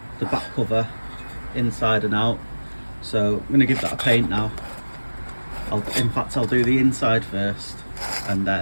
the back cover inside and out. So I'm going to give that a paint now. In fact, I'll do the inside first, and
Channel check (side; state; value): both; inverted; correlation -1.00